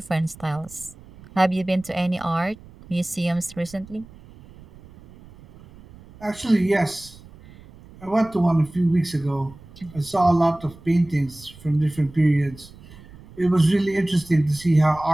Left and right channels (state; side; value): noise; right; rumble, 21 dB below the sound